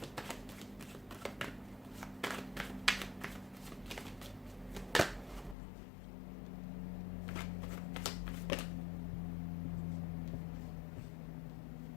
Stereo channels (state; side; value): drops out; right; at 5.6 s